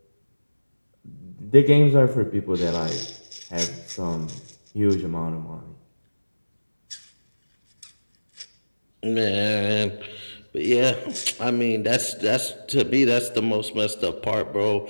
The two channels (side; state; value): both; inverted; correlation -1.00